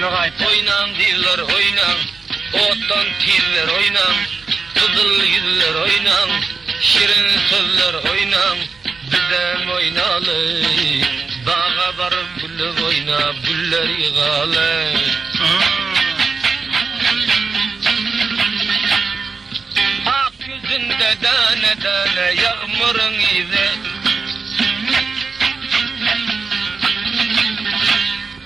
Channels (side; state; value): left; quieter; 4.7 dB